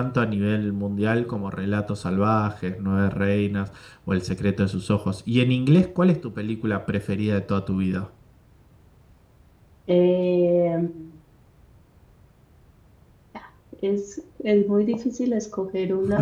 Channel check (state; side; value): identical; both; correlation 1.00